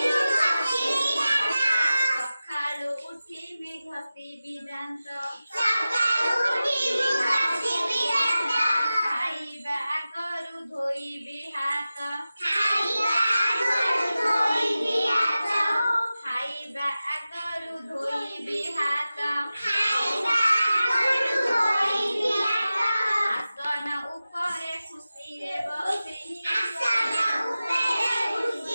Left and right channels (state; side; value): inverted; both; correlation -0.95